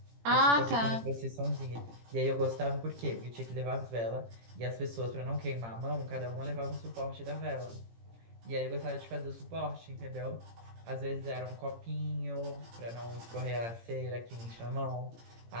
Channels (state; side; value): late; left; 17 ms